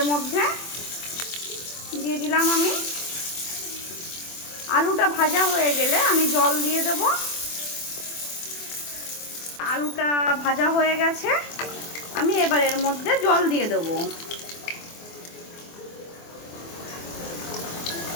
মধ্যে, দিয়ে দিলাম আমি। আলুটা ভাজা হয়ে গেলে আমি জল দিয়ে দেব। আলুটা ভাজা হয়ে গেছে, আমি এবার এর মধ্যে জল দিয়ে দেবো।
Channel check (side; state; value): right; late; 24 ms